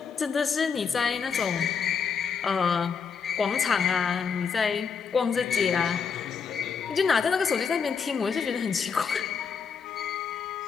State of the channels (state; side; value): quieter; right; 6.2 dB